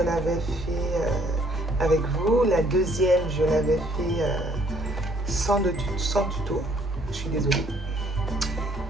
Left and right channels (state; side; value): normal; both; correlation 0.63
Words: fait avec vous. La deuxième, je l'avais fait sans tuto. Je suis désolée.